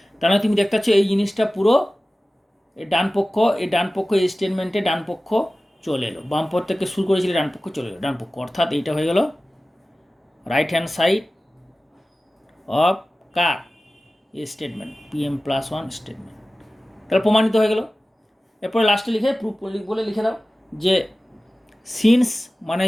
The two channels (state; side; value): normal; both; correlation 0.96